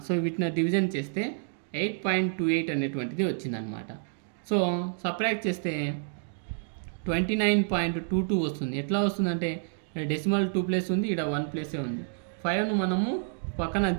So వీటిని division చేస్తే 8.28 అనేటువంటిది వచ్చిందనమాట. So subtract చేస్తే 29.22 వస్తుంది. ఎట్లా వస్తుందంటే decimal 2 place ఉంది, ఇక్కడ 1 ప్లేసే ఉంది. 5ను మనము పక్కన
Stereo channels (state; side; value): silent; left; digital silence